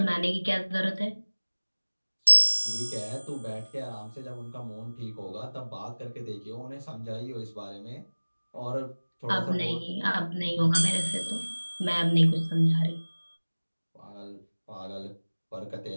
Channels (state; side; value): inverted; both; correlation -1.00